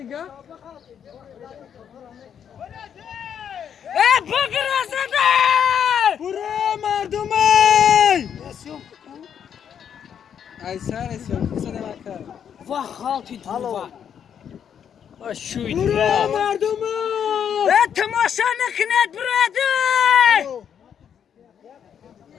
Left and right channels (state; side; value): quieter; right; 8.4 dB